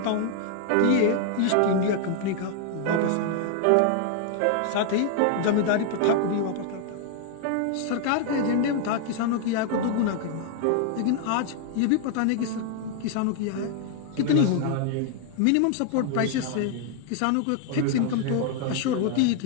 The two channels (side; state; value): both; different; correlation 0.00